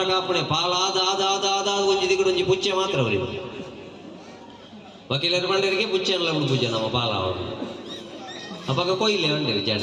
ಕಾಪಣೆ ಪಾಲಾದ ಆದ ಆದ ಆದ ಒಂಜಿ ದಿಗುಡು ಒಂಜಿ ಪುಚ್ಚೆ ಮಾತ್ರ ಅವರಿಗೆ ವಕೀಲರ ಬಂಡರಿಗೆ ಪುಚ್ಚೆ ಅಲ್ಲ ಉಂಡು ಪೂಜೆ ನಮ್ಮ ಪಾಲ ಅವರು ಅವಾಗ ಕೊಯ್ಲೆ ಬಂಡಿರಿ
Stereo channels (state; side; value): identical; both; correlation 1.00